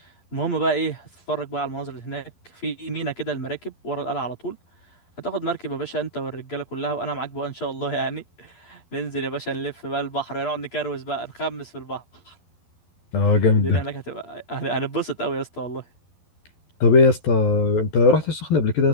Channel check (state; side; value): late; right; 12 ms